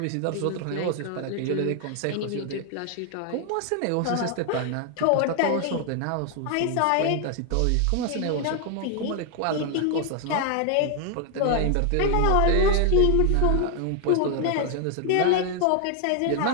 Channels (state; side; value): different; both; correlation 0.00